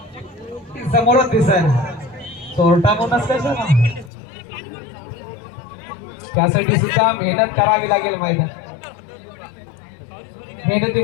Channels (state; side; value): drops out; right; at 4.1 s